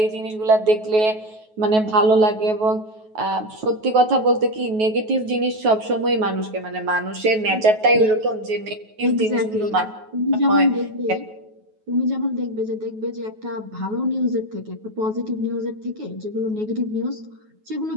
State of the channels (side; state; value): left; late; 9.3 ms